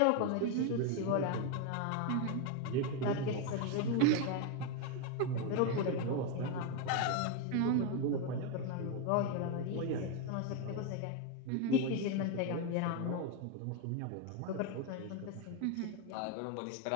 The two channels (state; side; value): different; both; correlation 0.02